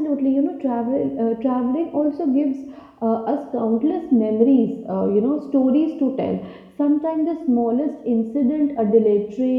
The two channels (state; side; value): identical; both; correlation 1.00